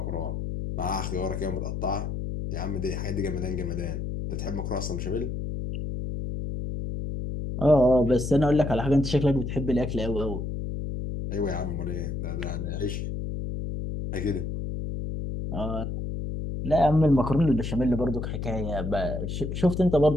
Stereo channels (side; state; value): left; noise; hum, 4 dB below the sound